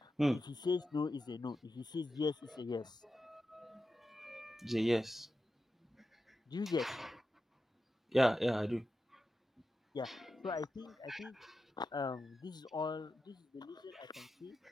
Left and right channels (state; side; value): normal; both; correlation 0.90